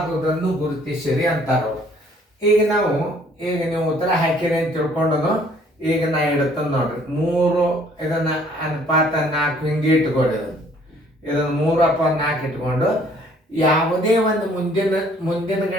ಗುರುತಿಸಿರಿ ಅಂತಾರವ್ರು. ಈಗ ನೀವು ಉತ್ತರ ಹಾಕಿರಿ ಅಂತ ತಿಳ್ಕೊಂಡನು. ಈಗ ನಾ ಇಡುತ್ತಂದು ನೋಡ್ರಿ, 3 ಇದನ್ನು ಅನುಪಾತ 4 ಹಿಂಗೆ ಇಟ್ಕೊಡಿ. ಇದನ್ನು 3/4 ಇಟ್ಕೊಂಡು ಯಾವುದೇ ಒಂದು ಮುಂದಿನ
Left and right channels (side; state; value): both; normal; correlation 0.60